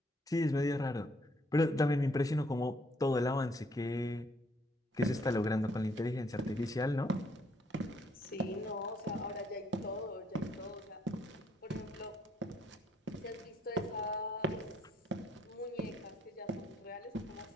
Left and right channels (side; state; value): both; normal; correlation 0.69